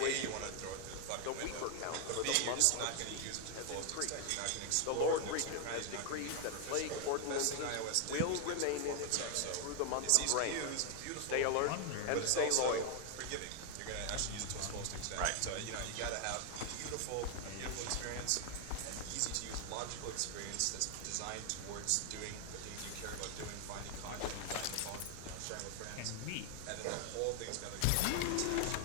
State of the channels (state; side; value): different; both; correlation 0.00